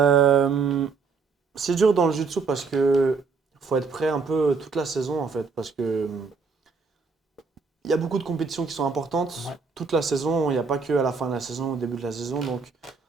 c'est dur dans le jiu-jitsu parce que faut être prêt un peu toute la saison en fait, parce que il y a beaucoup de compétitions qui sont importantes. Ouais, Toute la saison, il n'y a pas que à la fin de la saison, au début de la saison. Donc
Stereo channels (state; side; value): quieter; left; 4.9 dB